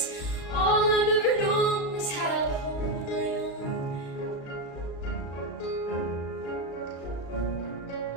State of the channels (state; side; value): late; right; 36 ms